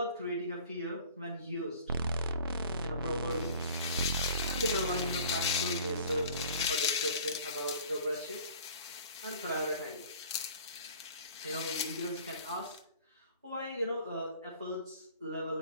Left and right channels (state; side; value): inverted; both; correlation -0.48